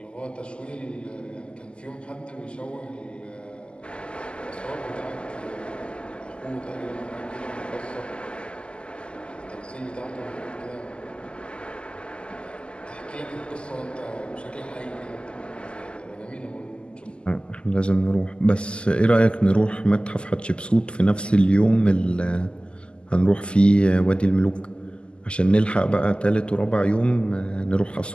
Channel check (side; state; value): right; late; 0.051 ms